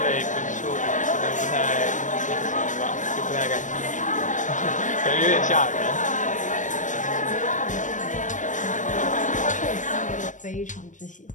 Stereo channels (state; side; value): late; right; 0.37 ms